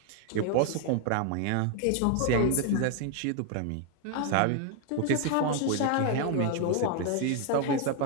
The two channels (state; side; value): different; both; correlation 0.00